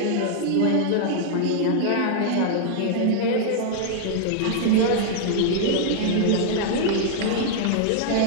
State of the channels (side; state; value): both; different; correlation -0.01